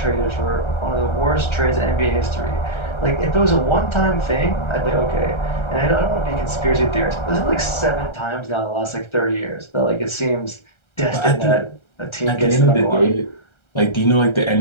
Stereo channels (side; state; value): right; late; 1.3 ms